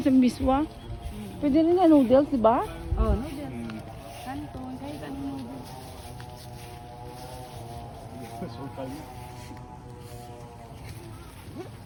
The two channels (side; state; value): both; identical; correlation 1.00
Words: sa miswa. Pwede rin na noodles, di ba? Oh, noodles. Kanton, kahit anong noodles.